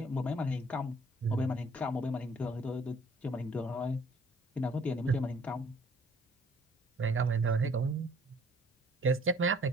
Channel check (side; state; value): both; normal; correlation 0.59